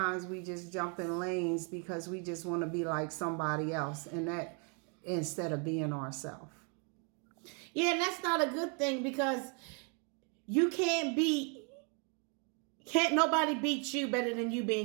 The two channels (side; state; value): left; quieter; 37.5 dB